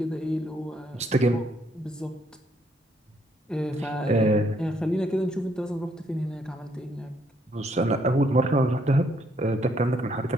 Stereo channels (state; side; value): normal; both; correlation 0.70